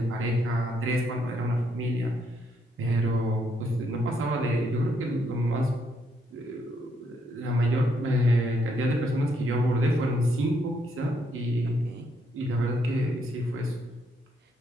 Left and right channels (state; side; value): normal; both; correlation 0.74